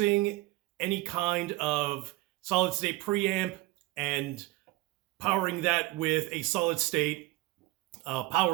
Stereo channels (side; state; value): left; quieter; 18.1 dB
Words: any kind of solid state preamp and powering that with a solid state